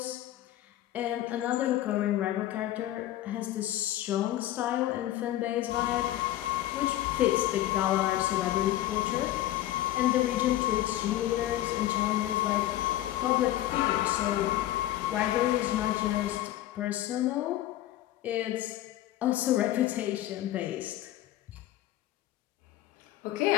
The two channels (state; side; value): quieter; right; 14.1 dB